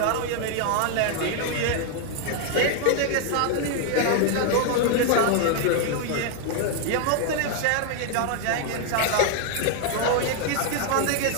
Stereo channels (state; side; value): different; both; correlation 0.00